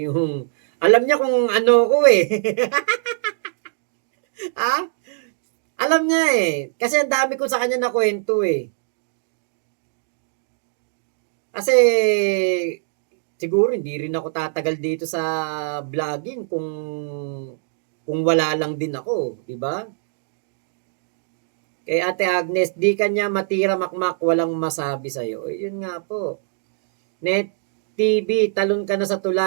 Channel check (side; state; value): left; silent; 64 dB below the other